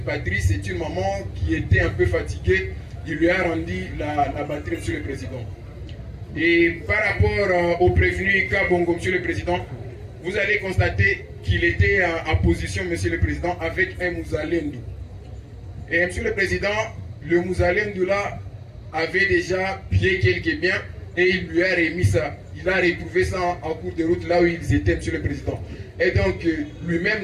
batterie. C'est une maman qui était un peu fatiguée. Il lui a rendu la batterie, Monsieur le Président. Et par rapport au prévenu Kabongo, Monsieur le Président, vous allez constater qu'il était en position, Monsieur le Président, avec un Mouzalendu. Et Monsieur le Président, le Mouzalendu là avait déjà pillé quelques biens et il lui a remis ça. Il a retrouvé ça en cours de route là où ils étaient, Monsieur le Président. Et donc, lui-même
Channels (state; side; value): identical; both; correlation 1.00